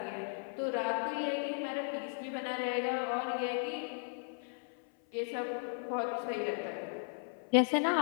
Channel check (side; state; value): right; silent; 54 dB below the other